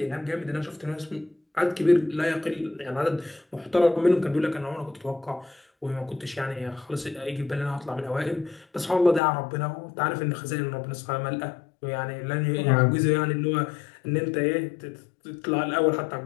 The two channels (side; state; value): right; drops out; at 9.2 s